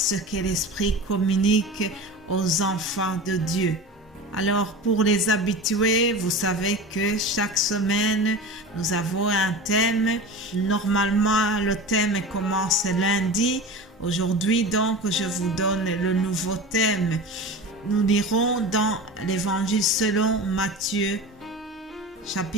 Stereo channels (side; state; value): both; normal; correlation 0.31